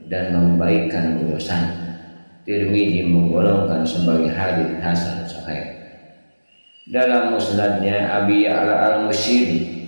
dan membaikkan urusan. Tirmidzi menggolongkan sebagai hadits hasan sahih. Dalam musnadnya Abi Ya'la al-Musyiri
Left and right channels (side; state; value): both; inverted; correlation -1.00